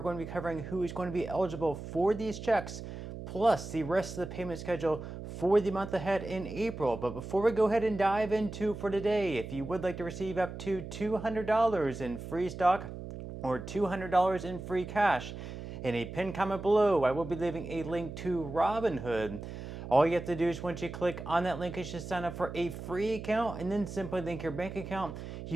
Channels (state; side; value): noise; right; hum, 9 dB below the sound